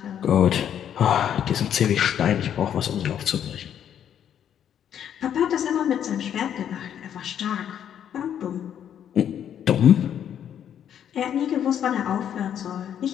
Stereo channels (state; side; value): quieter; right; 9.5 dB